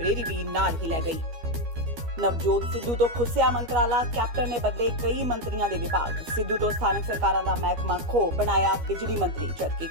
ਵੀ ਨਾਲ ਹੀ ਲੈ ਗਈ। ਨਵਜੋਤ ਸਿੱਧੂ ਤੋਂ ਖੁੱਸਿਆ ਮੰਤਰਾਲਾ, ਕੈਪਟਨ ਨੇ ਬਦਲੇ ਕਈ ਮੰਤਰੀਆਂ ਦੇ ਵਿਭਾਗ। ਸਿੱਧੂ ਤੋਂ ਸਥਾਨਕ ਸਰਕਾਰਾਂ ਦਾ ਮਹਿਕਮਾ ਖੋ ਬਣਾਇਆ ਬਿਜਲੀ ਮੰਤਰੀ, ਜਦਕਿ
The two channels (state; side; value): late; left; 15 ms